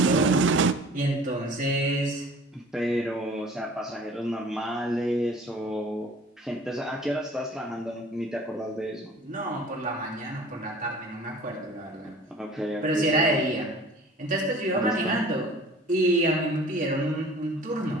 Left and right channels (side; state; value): both; normal; correlation 0.46